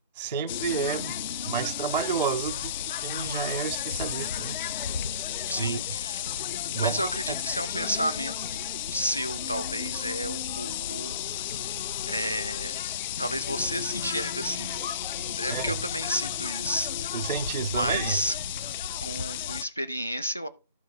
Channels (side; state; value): both; inverted; correlation -0.45